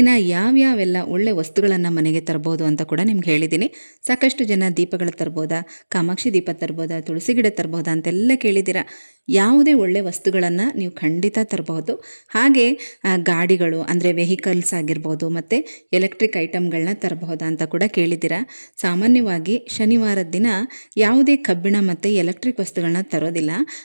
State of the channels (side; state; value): both; inverted; correlation -1.00